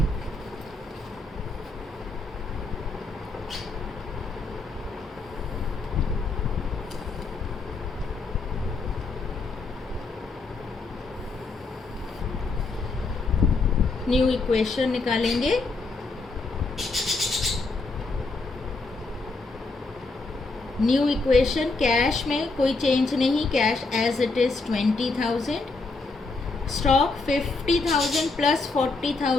न्यू इक्वेशन निकालेंगे। न्यू इक्वेशन, कैश में कोई चेंज नहीं, cash as it is 20,000, stock 50,000 plus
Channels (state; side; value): quieter; right; 3.7 dB